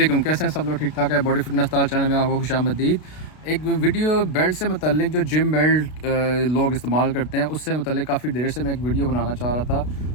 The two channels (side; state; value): right; late; 32 ms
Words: کیسے ہیں سب لوگ؟ ٹھیک ٹھاک ہے؟ باڈی فٹنس اسٹار چینل میں آپ کو خوش آمدید۔ ایک ویڈیو بیلٹ سے متعلق جو جم بیلٹ لوگ استعمال کرتے ہیں اس سے متعلق کافی دیر سے میں ایک ویڈیو بنانا چاہ رہا